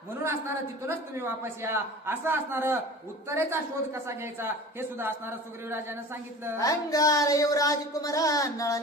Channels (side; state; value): both; normal; correlation 0.38